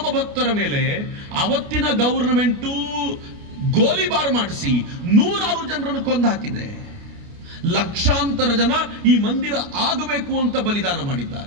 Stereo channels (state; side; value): late; left; 29 ms